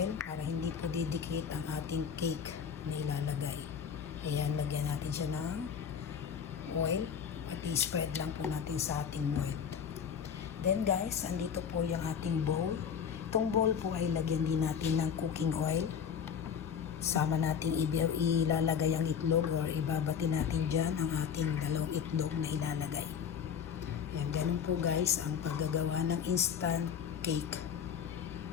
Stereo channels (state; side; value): quieter; right; 7.4 dB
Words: para hindi po didikit ang ating cake na ilalagay. Ayan, lagyan natin siya ng oil at i-spread lang po natin sa ating mold. Then guys, andito po yung ating bowl. Itong bowl po ay lagyan din natin ng cooking oil. Sama natin ilalagay ang itlog or ibabati natin dyan ang ating dalawang itlog na ilalagay. Yan, ganun po guys ang paggagawa ng instant cake.